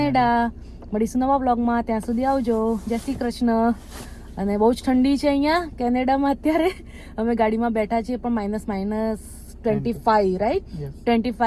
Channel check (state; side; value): identical; both; correlation 1.00